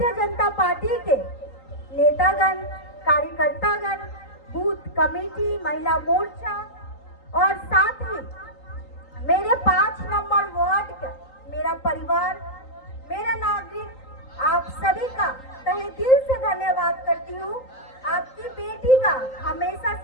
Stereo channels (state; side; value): late; right; 3.8 ms